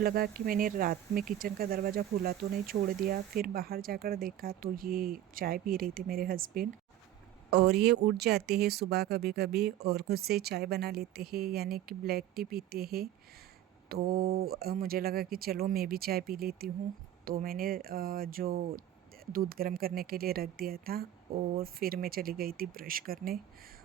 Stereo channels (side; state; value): left; quieter; 12.1 dB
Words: कि मैंने रात में किचन का दरवाज़ा खुला तो नहीं छोड़ दिया। फिर बाहर जाकर देखा तो ये चाय पी रहे थे मेरे हस्बैंड। और ये उठ जाते हैं सुबह कभी कभी और खुद से चाय बना लेते हैं, यानी कि ब्लैक टी पीते हैं। तो मुझे लगा कि चलो मैं भी चाय पी लेती हूँ। तो मैंने जो दूध गर्म करने के लिए रख दिया था और फिर मैं चली गई थी ब्रश करने।